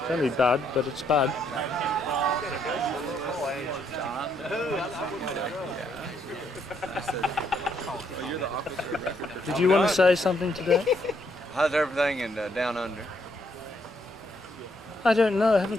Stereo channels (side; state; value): both; normal; correlation 0.73